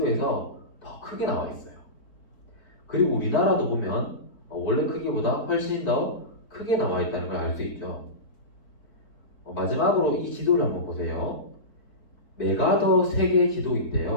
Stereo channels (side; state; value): right; late; 4.5 ms